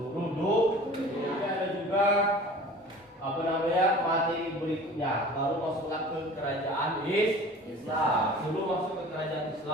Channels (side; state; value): both; normal; correlation 0.43